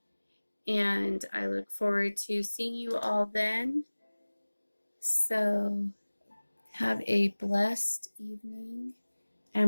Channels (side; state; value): both; inverted; correlation -1.00